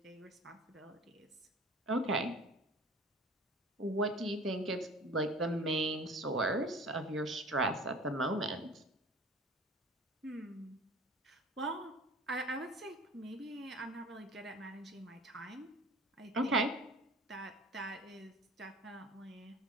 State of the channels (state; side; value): normal; both; correlation 0.42